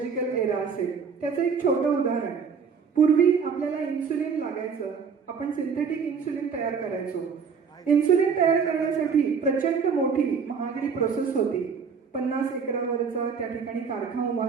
एरा असेल. त्याचं एक छोटं उदाहरण, पूर्वी आपल्याला इन्सुलिन लागायचं, आपण सिंथेटिक इन्सुलिन तयार करायचो. इन्सुलिन तयार करण्यासाठी प्रचंड मोठी महागडी प्रोसेस होती. 50 एकरावरचा त्या ठिकाणी कारखाना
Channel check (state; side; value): quieter; left; 6.0 dB